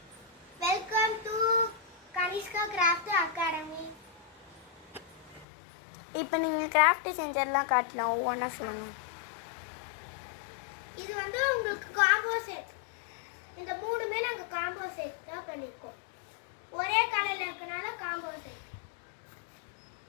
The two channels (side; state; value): right; drops out; at 5.5 s